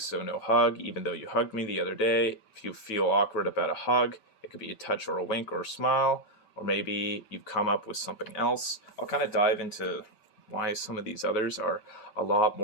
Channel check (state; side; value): late; right; 5.2 ms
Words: no hug, even though you hugged me the other day. If you feel awkward about a hug, it could be a touch or a wink or a smile. or maybe you've come up with something else. I'll kind of dive into why some of these others are a lot